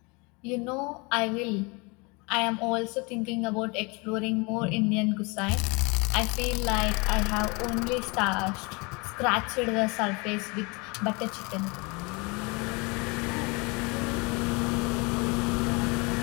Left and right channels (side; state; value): right; quieter; 28.8 dB